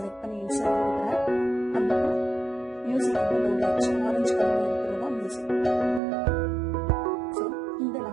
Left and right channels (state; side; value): drops out; left; at 6.0 s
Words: பண்ணி இன்சர்ட் கொடுக்குறேன். அந்த மியூசிக் வந்து லோட் ஆகிடுச்சு. ஆரஞ்சு கலரில் இருக்கிறதா மியூசிக். ஸோ இந்த